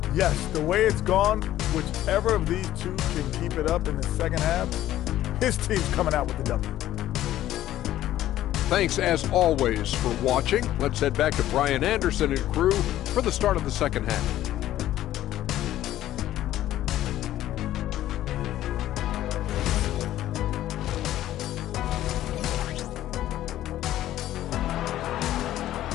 Yes, the way it's gone, whichever of these two can keep it up in the second half, his team's coming out with the W. Thanks, as always, for watching. Let's head back to Brian Anderson and crew for the start of the second half.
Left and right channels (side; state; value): right; quieter; 13.4 dB